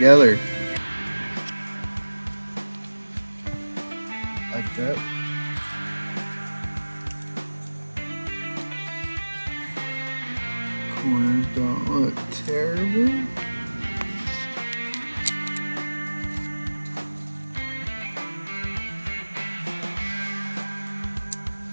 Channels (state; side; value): inverted; both; correlation -1.00